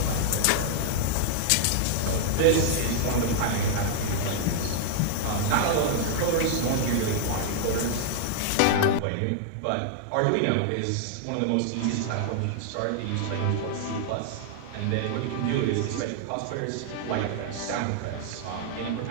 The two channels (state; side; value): different; both; correlation -0.01